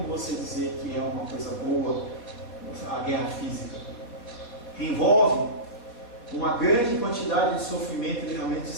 você dizer que é uma coisa boa a guerra física. Envolve uma grande quantidade de sofrimento e realmente de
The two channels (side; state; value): right; late; 4.2 ms